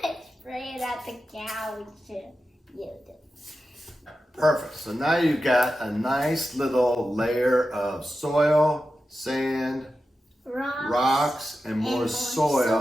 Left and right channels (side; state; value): both; normal; correlation 0.91